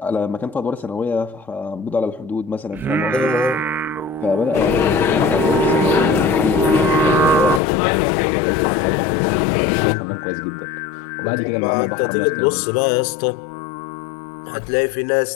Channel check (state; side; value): drops out; right; at 7.6 s